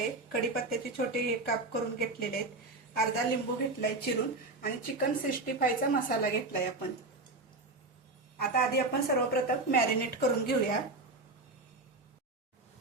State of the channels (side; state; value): left; quieter; 3.1 dB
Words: कढीपत्त्याचे छोटे काप करून घेतलेले आहेत, अर्धा लिंबू घेतलाय चिरून आणि चिकन 65 चा मसाला घेतलाय आपण। आता आधी आपण सर्वप्रथम मॅरिनेट करून घेऊया।